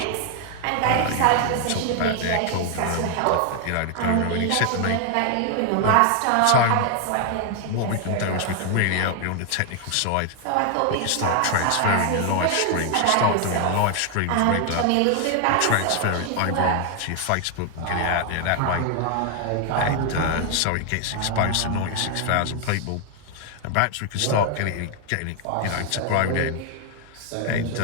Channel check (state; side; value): different; both; correlation 0.00